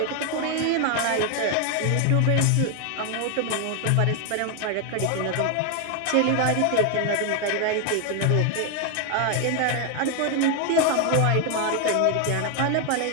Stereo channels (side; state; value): both; different; correlation 0.01